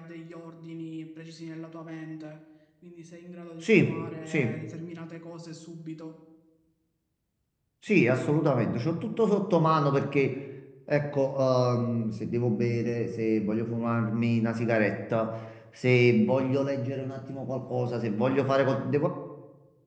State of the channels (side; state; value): both; identical; correlation 1.00